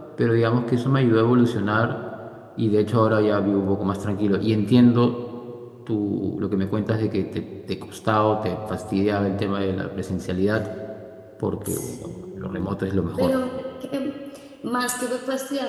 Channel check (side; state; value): both; identical; correlation 1.00